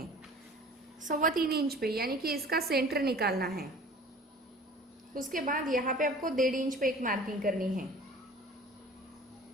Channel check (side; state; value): both; normal; correlation 0.45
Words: 3.25 इंच पे यानी कि इसका सेंटर निकालना है। उसके बाद यहाँ पे आपको 1.5 इंच पे एक मार्किंग करनी है।